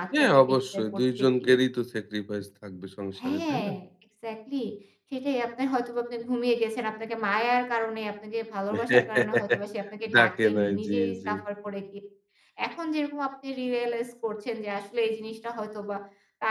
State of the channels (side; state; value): both; identical; correlation 1.00